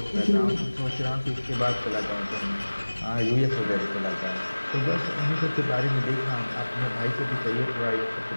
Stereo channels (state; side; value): inverted; both; correlation -1.00